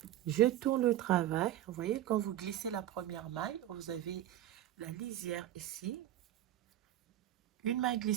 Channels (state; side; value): quieter; left; 12.8 dB